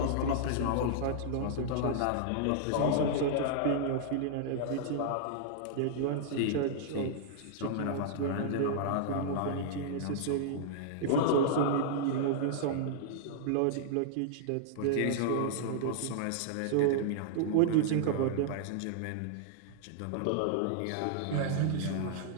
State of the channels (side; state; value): both; different; correlation -0.01